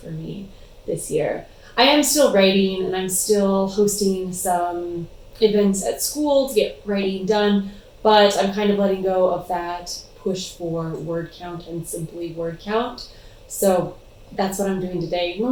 for me this year. I am still writing and I'm still hosting some events at school to get writing done, but I'm kind of letting go of that push for word count and simply word count. So that's what I'm doing today.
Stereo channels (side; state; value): both; identical; correlation 1.00